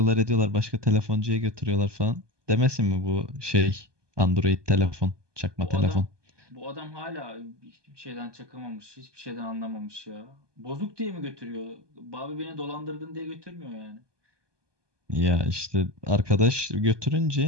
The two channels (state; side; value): late; left; 1.2 ms